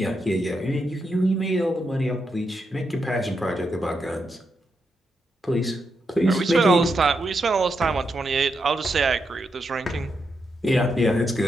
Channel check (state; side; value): normal; both; correlation 0.83